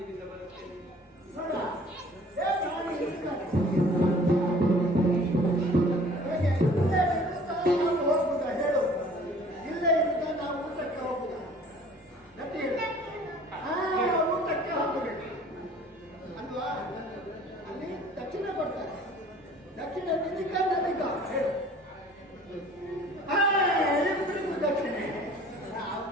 ಬರುತ್ತೇನೆ. ನೋಡುವ. ಹೋಗುದಾ ಹೇಳು, ಇಲ್ಲೇ ಇರುತ್ತಾ ನಾವು ಊಟಕ್ಕೆ ಹೋಗುದಾ? ಗಟ್ಟಿ ಹೇಳು. ಊಟಕ್ಕೆ ಹೋಗಬೇಕು ಅಲ್ವಾ? ಅಲ್ಲಿ ದಕ್ಷಿಣ ಕೊಡ್ತಾರೆ. ದಕ್ಷಿಣ ನಿಧಿಕ ನದಿಕ ಹೇಳು. ಇಬ್ಬರಿಗೂ ದಕ್ಷಿಣೆ.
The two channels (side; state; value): both; normal; correlation 0.50